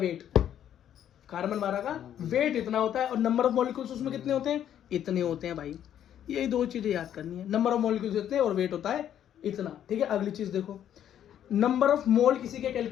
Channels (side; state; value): right; quieter; 10.3 dB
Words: कार्बन 12 का वेट इतना होता है। और नंबर ऑफ मॉलिक्यूल्स उसमें कितने होते हैं, इतने होते हैं भाई। यही दो चीजें याद करनी है, नंबर ऑफ मॉलिक्यूल्स इतने और वेट होता है इतना। ठीक है, अगली चीज देखो, नंबर ऑफ मोल किसी के